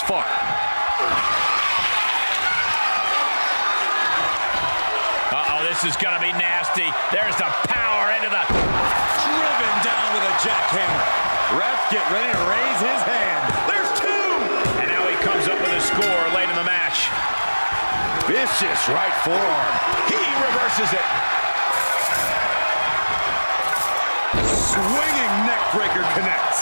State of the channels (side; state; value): both; inverted; correlation -1.00